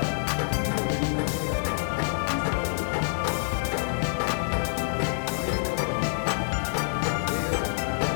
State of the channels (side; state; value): right; silent; digital silence